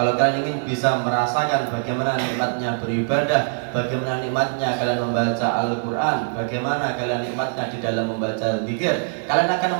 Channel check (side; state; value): left; silent; 64 dB below the other